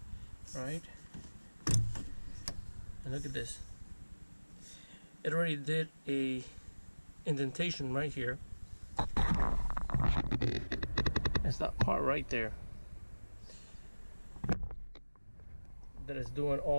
right? And look at this. It already did a indentation right here. It's that part right there that is doing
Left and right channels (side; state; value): both; inverted; correlation -1.00